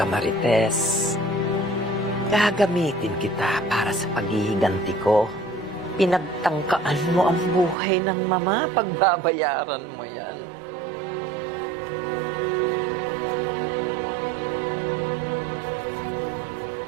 Marites. Gagamitin kita para sa paghihiganti ko. Pinagtangkaan mo ang buhay ng mama. Pagbabayaran mo yan.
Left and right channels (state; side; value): drops out; left; at 7.8 s